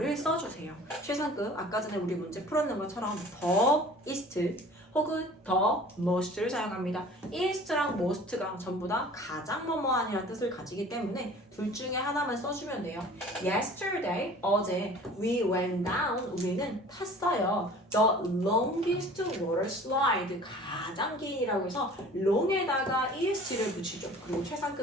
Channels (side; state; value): both; normal; correlation 0.46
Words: 써주세요. 최상급, 아까 전에 우리 문제 풀었는 것처럼 더, ist, 혹은 더 most를 사용합니다. ist랑 most가 전부 다 가장 뭐뭐한이라는 뜻을 가지기 때문에 둘 중에 하나만 써주면 돼요. Yesterday, 어제 we went down, 우리는 탔어요. The longest water slide, 가장 긴이라고 해서 long에다가 est를 붙이죠. 그리고